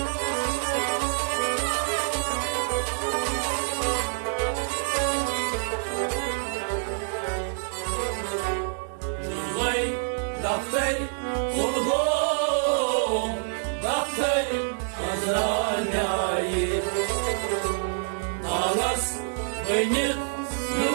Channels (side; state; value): left; silent; digital silence